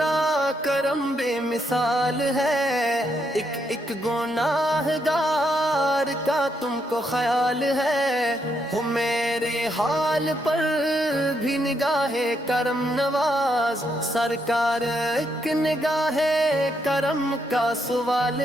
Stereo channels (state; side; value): normal; both; correlation 0.77